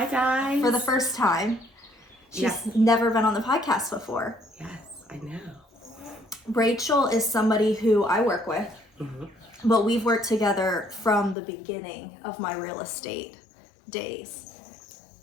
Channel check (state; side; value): drops out; right; at 11.4 s